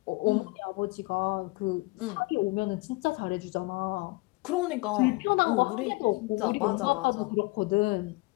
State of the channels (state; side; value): quieter; right; 24.7 dB